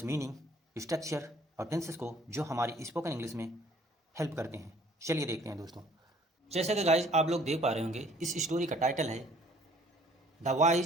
मीनिंग, स्ट्रक्चर और टेंसेस को जो हमारी स्पोकन इंग्लिश में हेल्प करते हैं। चलिए देखते हैं दोस्तों। जैसे कि गाइज आप लोग देख पा रहे होंगे, इस स्टोरी का टाइटल है the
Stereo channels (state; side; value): normal; both; correlation 0.57